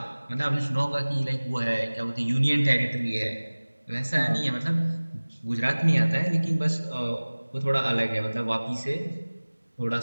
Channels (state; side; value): inverted; both; correlation -1.00